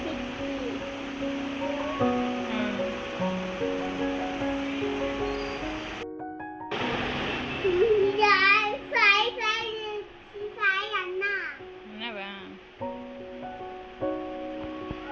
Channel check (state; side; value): identical; both; correlation 1.00